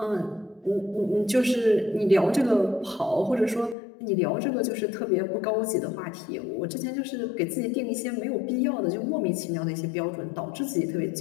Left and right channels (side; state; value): right; drops out; at 3.8 s